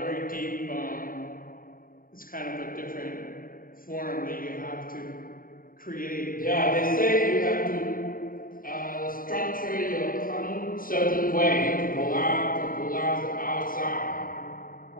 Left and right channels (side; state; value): right; late; 0.41 ms